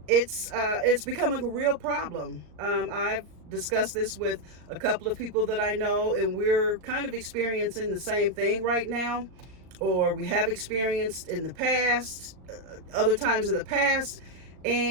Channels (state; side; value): late; left; 38 ms